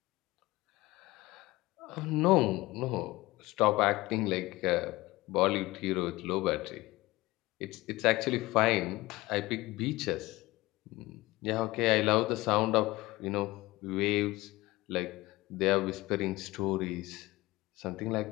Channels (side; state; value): right; quieter; 19.8 dB